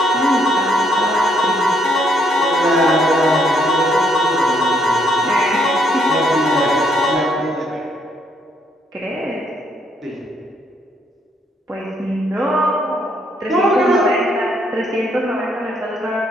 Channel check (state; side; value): normal; both; correlation 0.71